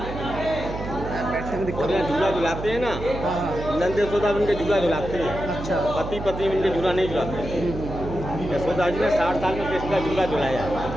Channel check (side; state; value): right; noise; hum, 8 dB below the sound